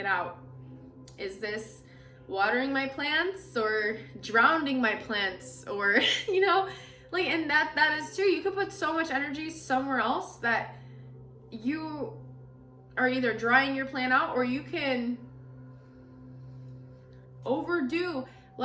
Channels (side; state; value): both; identical; correlation 1.00